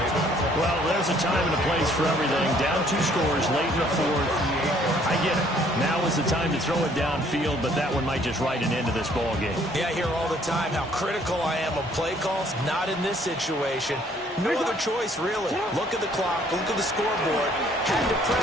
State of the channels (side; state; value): both; normal; correlation 0.62